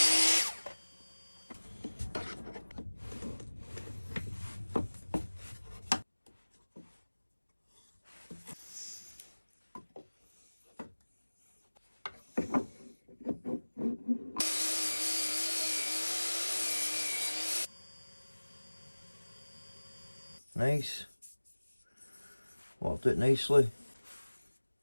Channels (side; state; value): both; inverted; correlation -1.00